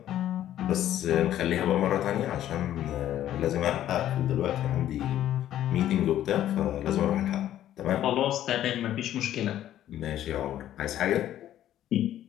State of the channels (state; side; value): quieter; right; 12.1 dB